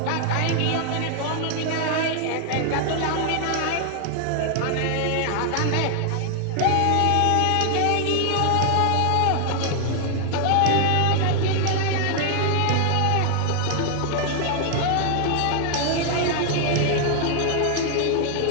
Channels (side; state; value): both; different; correlation 0.00